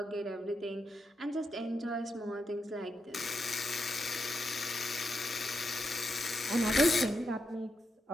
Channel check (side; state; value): both; normal; correlation 0.84